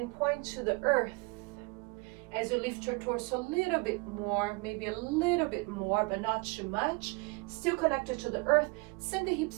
point to the earth. As you lift your torso a little bit more, maybe a little bit more, but not too much. Still connected to the earth. Send the hips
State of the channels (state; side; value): quieter; left; 27.4 dB